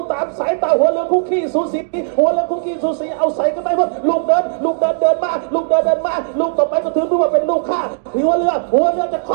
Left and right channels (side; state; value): left; silent; digital silence